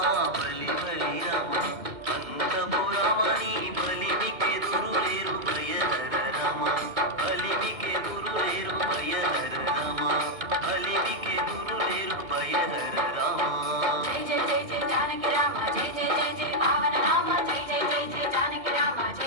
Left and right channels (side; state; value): left; late; 2.1 ms